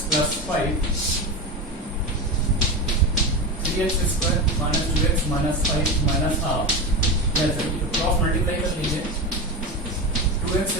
plus 5 3x square minus 2x minus 5 minus half cross multiply कर लीजिए। 2x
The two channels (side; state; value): both; normal; correlation 0.20